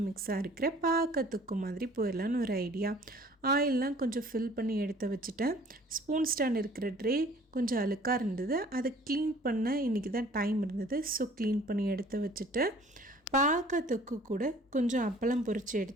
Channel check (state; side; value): normal; both; correlation 0.52